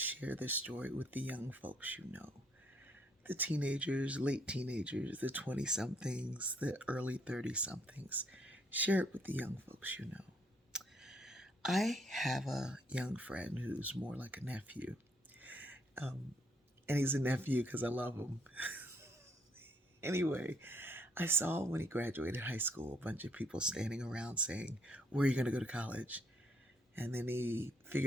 this story with the young folks you know, the teenagers, late teenagers, the 20 somethings, the early 30 somethings. Share it with the young folks you know. I have a young friend who's more like a nephew, um, and he's a nephew because I love him. Anyway, I saw when he graduated high school a bunch of people standing around saying, "Where are you going to go to college?" And then he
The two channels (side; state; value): both; normal; correlation 0.69